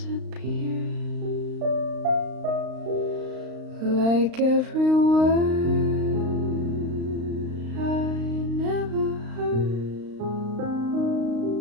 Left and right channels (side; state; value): left; late; 35 ms